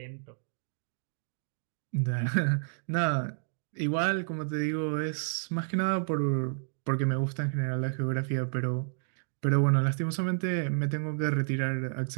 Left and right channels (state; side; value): silent; left; digital silence